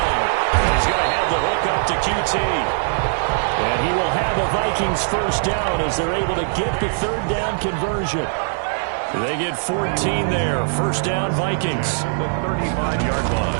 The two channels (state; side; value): silent; left; digital silence